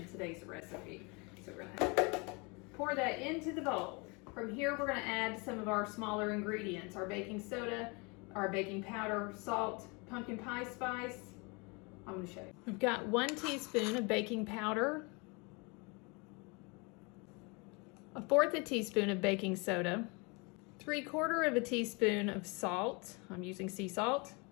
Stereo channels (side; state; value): right; quieter; 29.7 dB